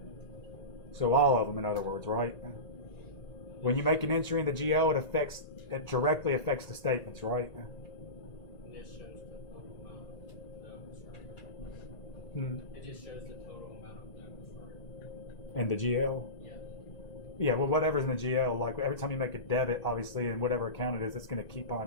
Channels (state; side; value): late; right; 1.9 ms